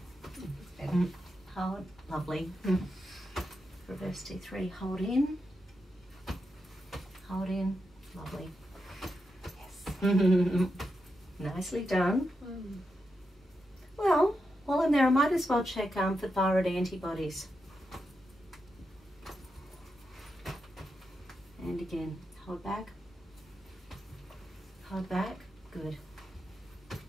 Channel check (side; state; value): both; normal; correlation 0.86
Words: Hold. Lovely. Reverse T3, hold in. Hold in. Lovely. Yes. Nicely done. Well, while I'm there, I might as well check for thyroid antibodies. And again, hold back. Hold back. Good.